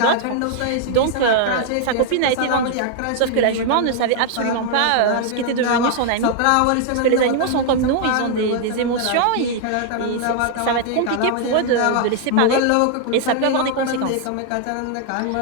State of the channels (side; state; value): both; different; correlation -0.01